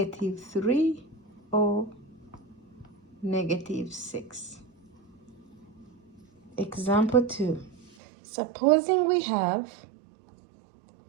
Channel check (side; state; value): left; drops out; at 7.9 s